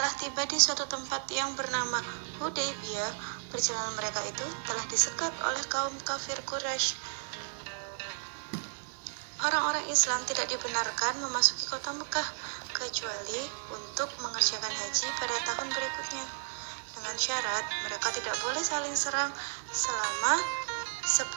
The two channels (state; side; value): silent; left; digital silence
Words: tiba di suatu tempat yang bernama Hudaybiyah, perjalanan mereka itu telah disekat oleh kaum kafir Quraisy. Orang-orang Islam tidak dibenarkan memasuki kota Mekah kecuali untuk mengerjakan haji pada tahun berikutnya, dengan syarat mereka tidak boleh saling serang selama 10